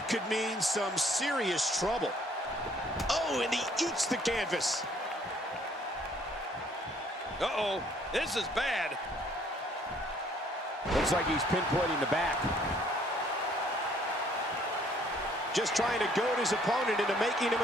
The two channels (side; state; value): both; normal; correlation 0.62